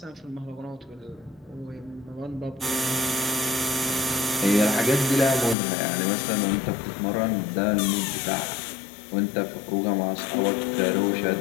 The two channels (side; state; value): right; drops out; at 5.6 s